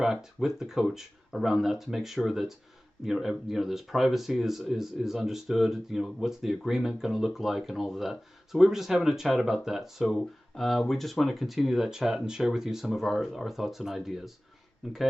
with the coach around that to make sure that there's privacy is understood. What's the agreement going to look like and all of that. So we were just having a chat about that. So we just want to continue that chat and share with you some of our thoughts and ideas.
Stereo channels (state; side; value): normal; both; correlation 0.98